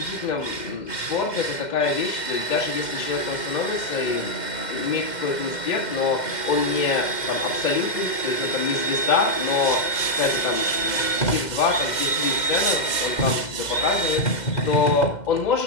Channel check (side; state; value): right; late; 2.1 ms